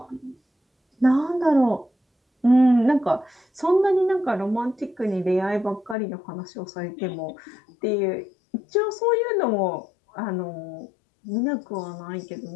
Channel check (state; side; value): drops out; right; at 6.0 s